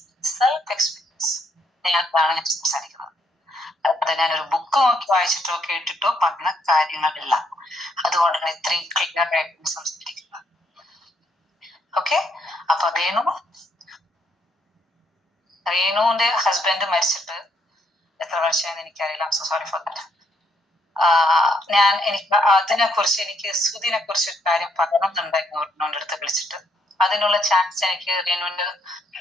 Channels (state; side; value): normal; both; correlation 0.73